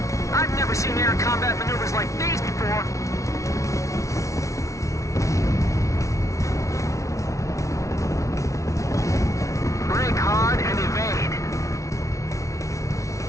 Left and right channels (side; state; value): right; late; 0.15 ms